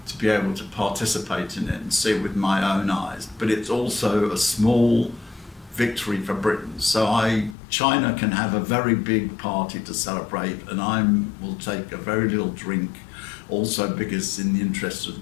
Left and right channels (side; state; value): right; drops out; at 7.6 s